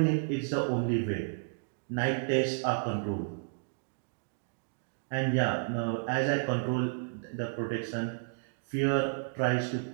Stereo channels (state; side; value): silent; left; digital silence